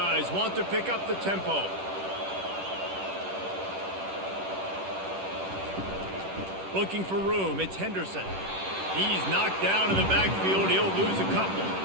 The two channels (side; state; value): left; late; 10 ms